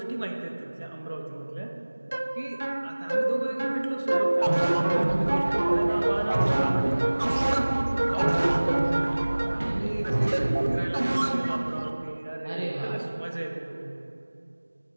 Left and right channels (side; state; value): both; inverted; correlation -1.00